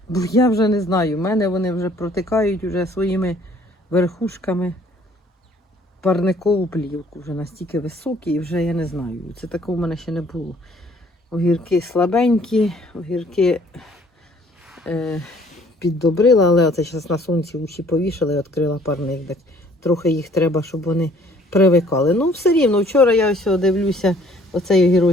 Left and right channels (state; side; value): normal; both; correlation 0.59